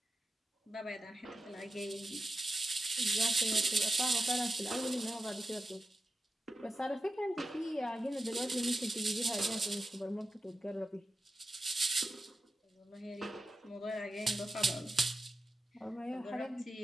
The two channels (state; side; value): normal; both; correlation 0.92